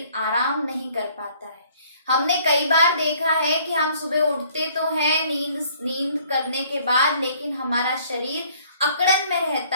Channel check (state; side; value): inverted; both; correlation -0.59